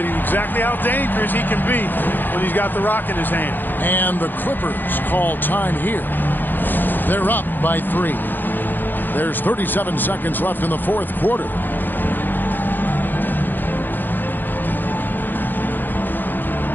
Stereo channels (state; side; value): late; right; 0.090 ms